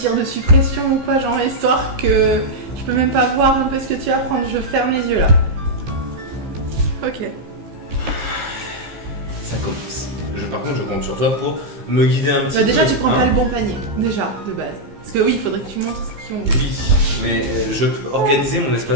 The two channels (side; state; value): left; late; 15 ms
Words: de suppression ou quoi, genre histoire que je peux même pas voir un peu ce que tu vas prendre. Je ferme les yeux là. Ok. Ça commence. Par contre, je compte sur toi pour me guider un petit peu. Déjà, tu prends pas le bon panier, déjà, de base. Parce que oui, il faudrait que tu montres ce qu'ils ont. Oui, mais je peux organiser mon